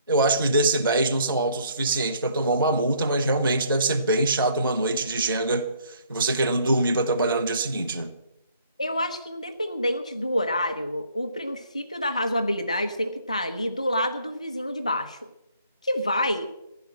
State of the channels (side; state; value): both; inverted; correlation -0.61